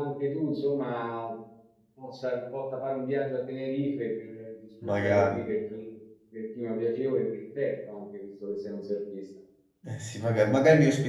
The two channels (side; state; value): both; identical; correlation 1.00